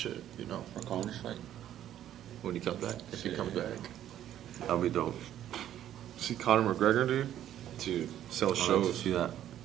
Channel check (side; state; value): left; quieter; 11.5 dB